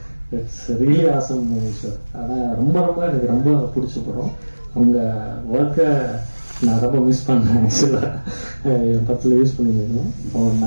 இட்ஸ் ரியலி ஆசம் சார். ஆனா ரொம்ப ரொம்ப எனக்கு ரொம்ப பிடிச்ச படம். உங்க ஒர்க்கை நான் ரொம்ப மிஸ் பண்ணேன். ஆக்சுவலாக என் படத்தில் யூஸ் பண்ணியிருந்தேன்.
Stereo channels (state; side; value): inverted; both; correlation -1.00